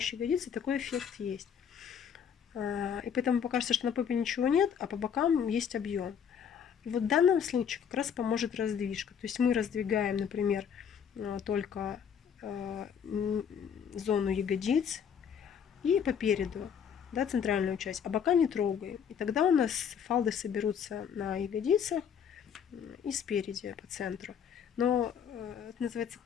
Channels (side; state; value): right; quieter; 7.7 dB